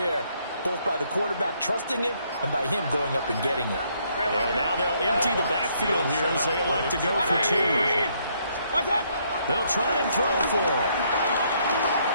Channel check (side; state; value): both; inverted; correlation -0.70